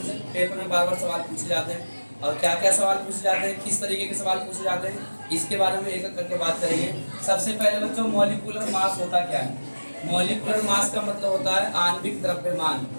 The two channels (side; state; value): both; inverted; correlation -1.00